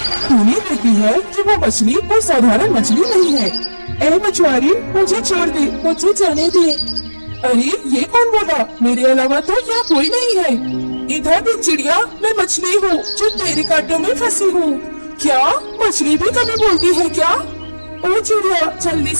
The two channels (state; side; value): inverted; both; correlation -1.00